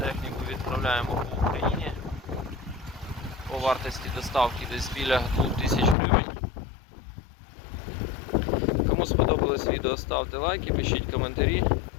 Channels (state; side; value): drops out; right; at 6.0 s